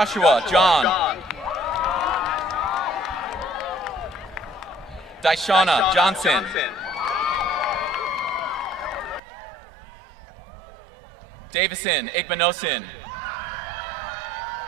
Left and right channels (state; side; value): drops out; left; at 9.2 s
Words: John. Daishana Johnson. Davison Igbenosin.